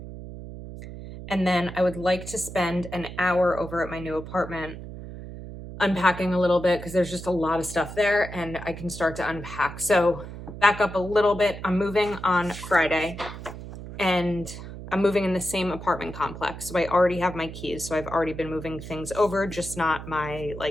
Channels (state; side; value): noise; right; hum, 11 dB below the sound